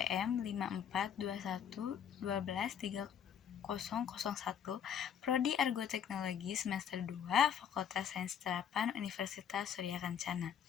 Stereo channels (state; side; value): quieter; right; 8.4 dB